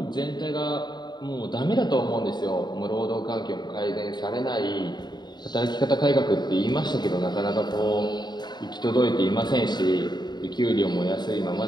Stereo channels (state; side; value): late; right; 0.21 ms